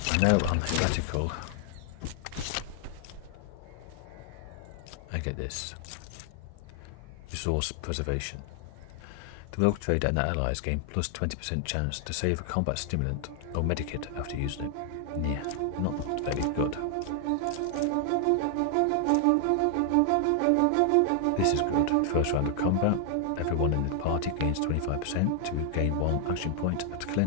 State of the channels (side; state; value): both; different; correlation 0.00